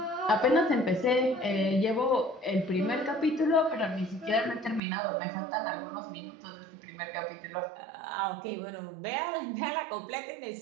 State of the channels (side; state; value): left; drops out; at 4.8 s